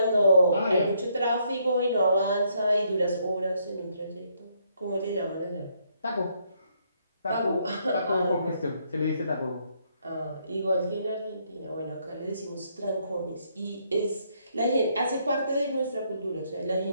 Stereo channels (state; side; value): inverted; both; correlation -0.72